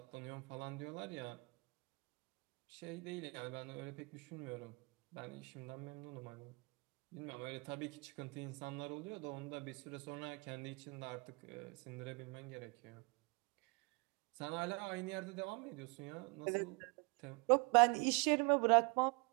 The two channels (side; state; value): left; quieter; 30.5 dB